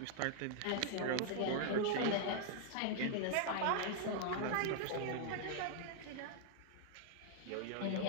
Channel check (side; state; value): both; different; correlation -0.01